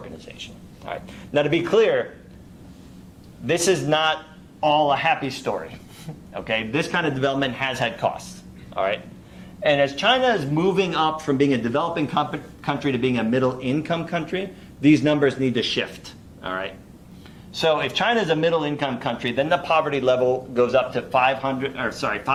All right. Now, to be clear, this is not all a happy story, okay? This kind of development has had costs, all right? And as China is moving up from being a developing country to being a middle-income country, these numbers need to shift, all right? So if China is a middle-income country, then the poverty level goes up to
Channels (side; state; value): both; identical; correlation 1.00